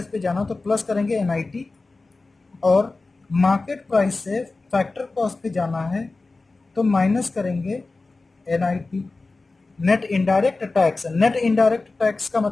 पे जाना तो प्लस करेंगे NIT, और मार्केट प्राइस से फैक्टर कॉस्ट पे जाना है तो माइनस करेंगे NIT, net indirect tax. Net indirect tax का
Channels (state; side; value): quieter; right; 3.5 dB